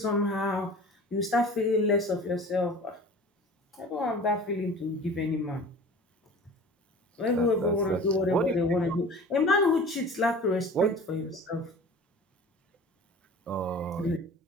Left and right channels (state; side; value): normal; both; correlation 0.41